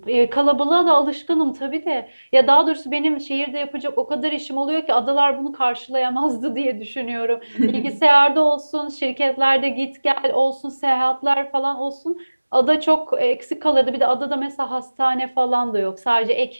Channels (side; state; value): both; inverted; correlation -1.00